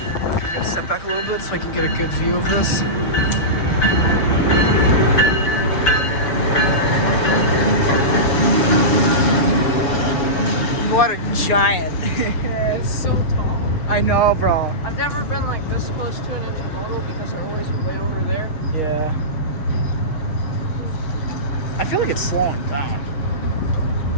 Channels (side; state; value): right; late; 6.8 ms